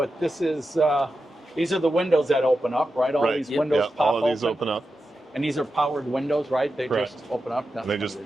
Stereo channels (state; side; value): normal; both; correlation 0.90